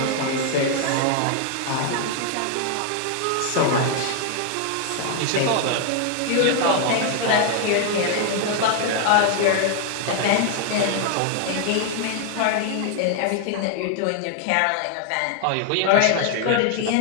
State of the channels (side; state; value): both; different; correlation 0.00